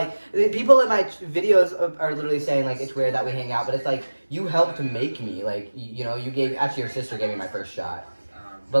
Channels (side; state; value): both; inverted; correlation -1.00